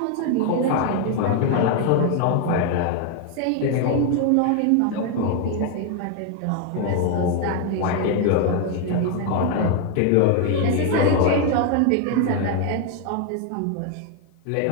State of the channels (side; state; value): both; different; correlation 0.01